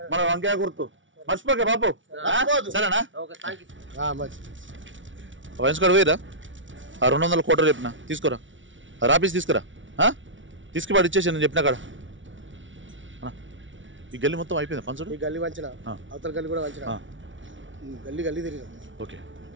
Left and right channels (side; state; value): left; late; 0.56 ms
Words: మన వంకాయ గుర్తు మర్చిపోకే బాపు సరేనా? వైన్స్కాడ్ పోయిరా 200 కోట్లు చెప్పిన తీసుకురా రాపీస్ తీసుకురా తీసుకుపాడు ఇచ్చేసి నేను చెప్పిన కాడ. ఈ గల్లీ మొత్తం అయిపోయింది పంచుడు. ఈ గల్లీ వంచిన అవతల గల్లీ కూడా వంచిన గల్లీ గల్లీ తిరిగి ఓకే.